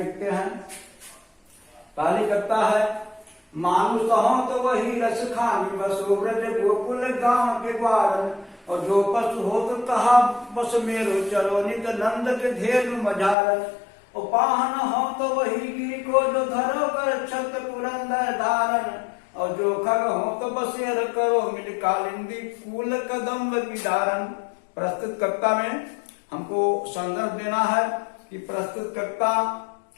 हैं। पहली कविता है, मानुष हो तो वही रसखान, बसो ब्रज गोकुल गांव के ग्वार, और जो पशु हो तो कहा बस मेरो, चलो नित नंद के धेनु मझार। और पाहन हो तो वही गिरी को, जो धरो कर छत पुरंदर धारण, और जो खग हो तो बसेर करो, मिल कालिंदी कूल कदम्ब की धारण। प्रस्तुत कविता में हमको संदर्भ देना है कि प्रस्तुत कविता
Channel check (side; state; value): right; drops out; at 13.4 s